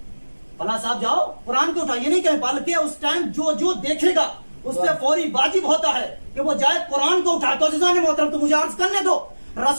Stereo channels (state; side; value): inverted; both; correlation -1.00